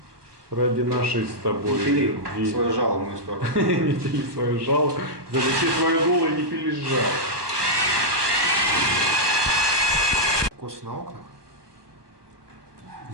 Ради нашей с тобой Пили любви. свое жало в мою сторону. Не пили свое жало, залепи свое дуло и не пили жало. Кос на окнах.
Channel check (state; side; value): late; left; 1.2 ms